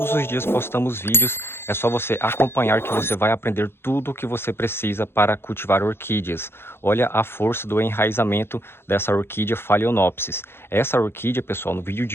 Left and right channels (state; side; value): late; right; 0.11 ms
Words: os dias postamos vídeos, é só você acompanhar que você vai aprender tudo o que você precisa para cultivar orquídeas. Olha a força do enraizamento dessa orquídea Phalaenopsis. Essa orquídea, pessoal, no vídeo